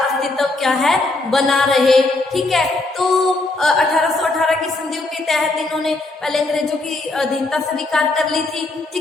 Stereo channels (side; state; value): right; quieter; 3.1 dB